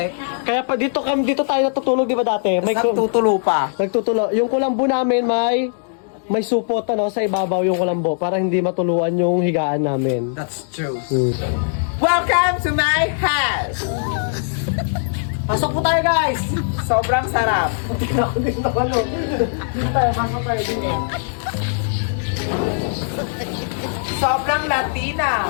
Kaya pa dito tayo natutulog, di ba dati? May Nagtutulo pa. nagtutulo. Yung kulambo namin may supot sa ibabaw yung kulambo para hindi matuluan yung higaan namin. That's true. Hmm. Welcome to my house! Pasok po tayo, guys! Sobrang sarap. Dito tayo, pasok tayo dito. Sobrang Latina.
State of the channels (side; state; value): right; silent; digital silence